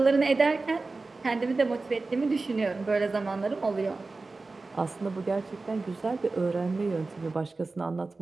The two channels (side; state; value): left; quieter; 3.6 dB